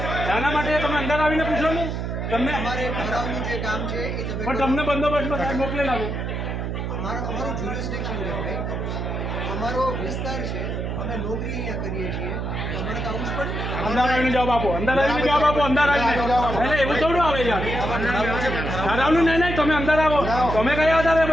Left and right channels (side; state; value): right; noise; hum, 3 dB below the sound